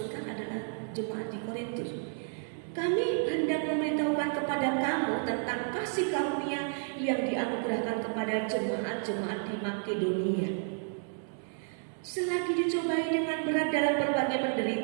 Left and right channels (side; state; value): left; silent; 57 dB below the other